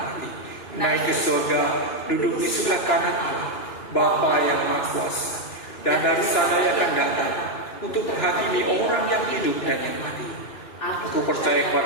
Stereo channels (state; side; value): late; right; 2.9 ms